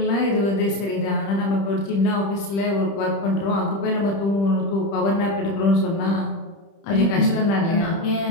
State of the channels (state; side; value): late; right; 30 ms